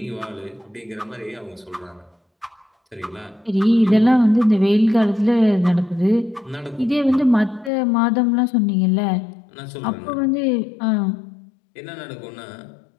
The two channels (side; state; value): right; drops out; at 7.7 s